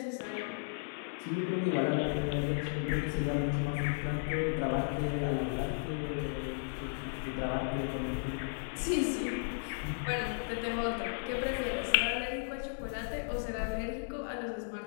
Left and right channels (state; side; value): silent; right; digital silence